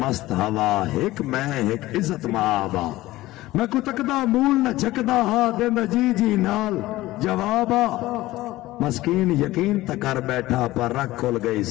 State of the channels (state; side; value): quieter; right; 17.4 dB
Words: ہوا ایک میں ایک عزت مآبا میں کو تکدا مول نہ چکدا ہاں دیندہ جی جی نال جوابا مسکین یقین تکر بیٹھا پر رکھ کھل گئی